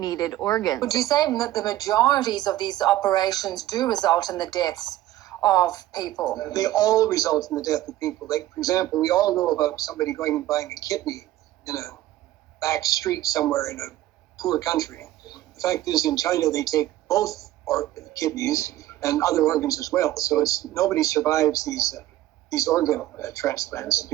organs. Would you say that the majorities of these operations do result in the deaths of people? They all result in the death of people. Like, for example, we all know about somebody going and buying a kidney in a back street somewhere in a poor country. The fact is, in China, they take both kidneys and other organs as well. So nobody survives these organ transplants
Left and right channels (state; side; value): quieter; left; 14.8 dB